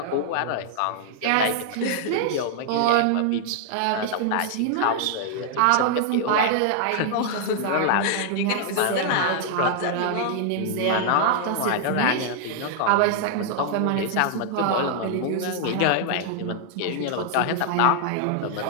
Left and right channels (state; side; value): different; both; correlation -0.01